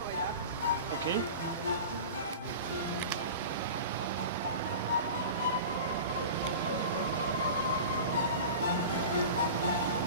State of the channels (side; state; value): both; inverted; correlation -0.33